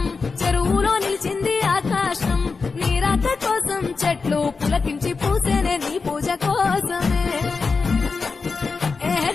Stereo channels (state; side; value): quieter; right; 4.6 dB